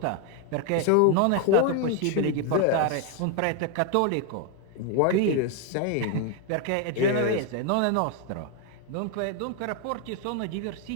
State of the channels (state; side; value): different; both; correlation 0.01